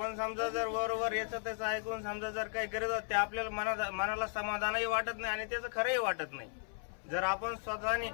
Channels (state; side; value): silent; right; 54 dB below the other